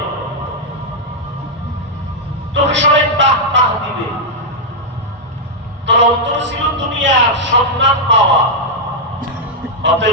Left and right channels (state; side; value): normal; both; correlation -0.04